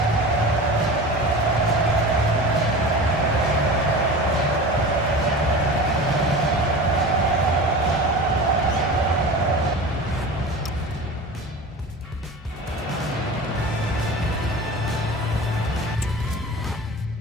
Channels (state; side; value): normal; both; correlation 0.33